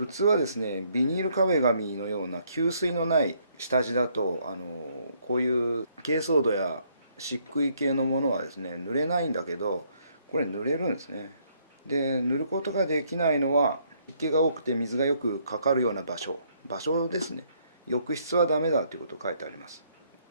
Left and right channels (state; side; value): inverted; both; correlation -0.69